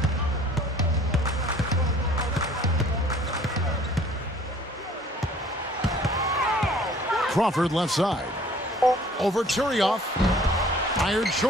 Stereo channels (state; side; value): normal; both; correlation 0.53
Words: Crawford left side. Over Turioff. Fired